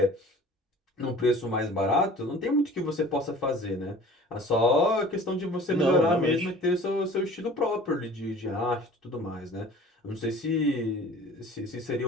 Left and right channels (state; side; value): normal; both; correlation 0.46